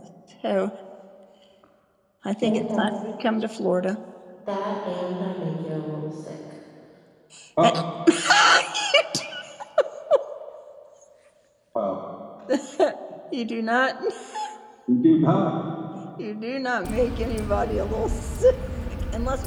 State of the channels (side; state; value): both; identical; correlation 1.00